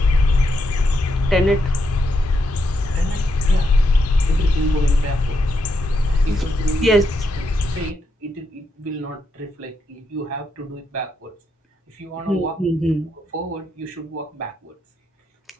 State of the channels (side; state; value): both; normal; correlation 0.81